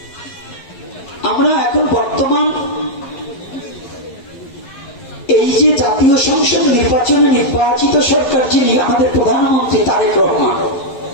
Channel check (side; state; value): right; late; 11 ms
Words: আমরা এখন বর্তমান এই যে জাতীয় সংসদ নির্বাচনে নির্বাচিত সরকার, যিনি আমাদের প্রধানমন্ত্রী তারেক রহমান,